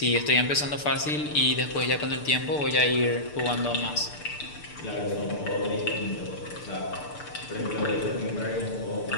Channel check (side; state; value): right; late; 6.8 ms